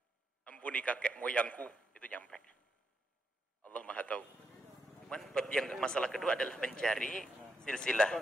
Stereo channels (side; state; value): both; normal; correlation 0.82